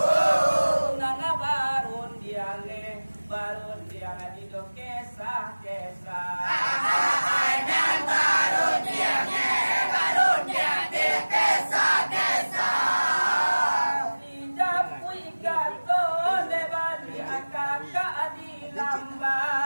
barun dia ngadido kesah Ainan barun dia di kesah dijapui gato de bali akaka di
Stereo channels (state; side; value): inverted; both; correlation -1.00